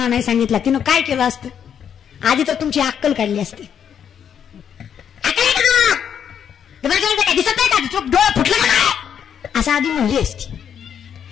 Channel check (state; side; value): quieter; right; 8.4 dB